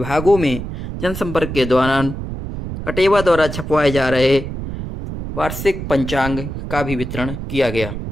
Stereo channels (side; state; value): right; noise; rumble, 7 dB below the sound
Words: में जनसंपर्क के दौरान अटेवा द्वारा छपवाए जा रहे वार्षिक पंचांग का भी वितरण किया गया।